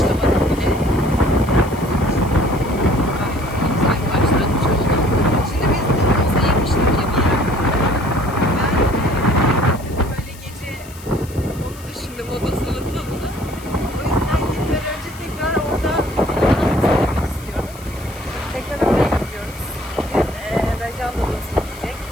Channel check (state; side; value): noise; left; hiss, 20 dB below the sound